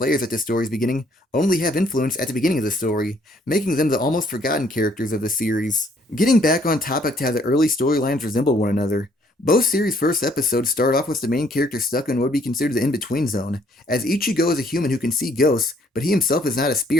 at the story's beginning only have influence at the beginning of the story, making them the almost forgotten characters of the series. Getting back on topic to how the early storylines resemble one another, both series' first episodes start off with the main character stuck in what would be considered the in-between zone, as Ichigo is a human who can see ghosts, but he himself is not a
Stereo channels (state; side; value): normal; both; correlation 0.64